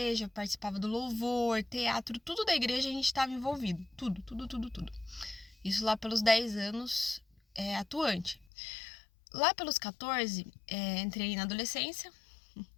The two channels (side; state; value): right; drops out; at 8.5 s